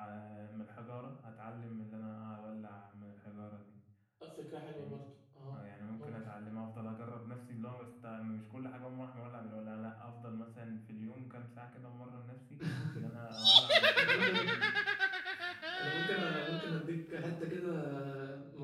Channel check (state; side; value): identical; both; correlation 1.00